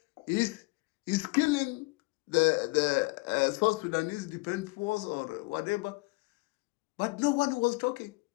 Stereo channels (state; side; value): quieter; right; 26.0 dB